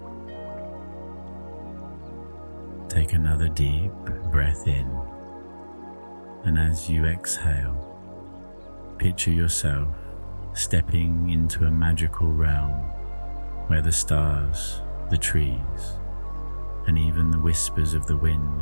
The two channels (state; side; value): inverted; both; correlation -1.00